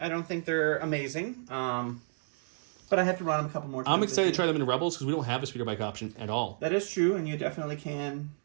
I don't think they're amazing. But I have to run them a couple more times. I'm excited to try them in Rebels because we don't have a speeder bike option at all. That is true, and you definitely can.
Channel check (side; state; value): left; silent; digital silence